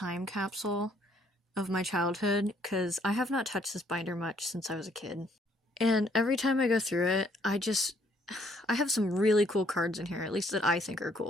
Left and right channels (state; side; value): normal; both; correlation 0.66